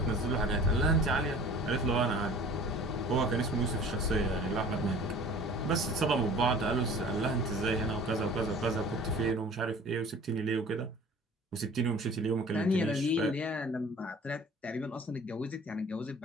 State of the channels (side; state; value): both; normal; correlation 0.46